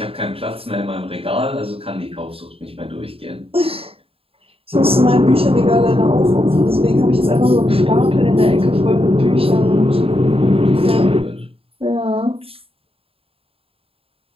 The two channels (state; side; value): late; left; 0.27 ms